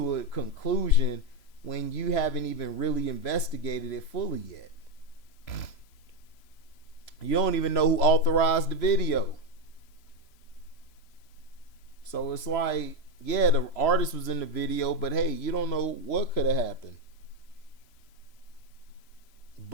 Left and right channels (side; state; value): right; late; 3.0 ms